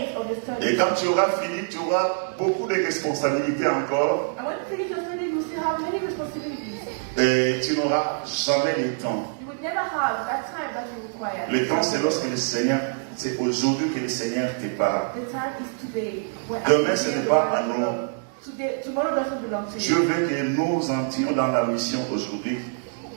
of the study. Et quand tu auras fini, tu auras beaucoup de responsabilités encore. And when you finish your study, you still have many responsibilities. Et tu n'auras jamais le temps. You would never have that time that you require. Le temps, c'est lorsque le Seigneur, c'est aujourd'hui que le Seigneur te parle. The time is today. When Demain, I ce hear n'est the pas word à of the nous. Lord. Tomorrow doesn't belong to Dieu you. veut que nous entrions dans la mission aujourd'hui.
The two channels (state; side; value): silent; left; digital silence